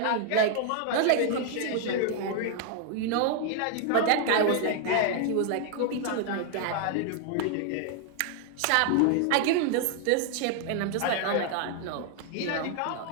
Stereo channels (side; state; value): both; different; correlation 0.00